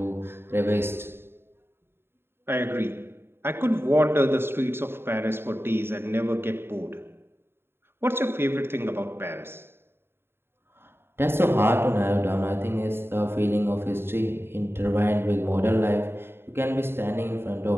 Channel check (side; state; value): left; late; 0.11 ms